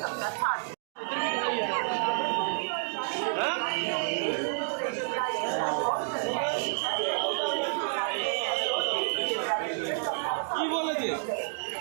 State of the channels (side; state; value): left; silent; digital silence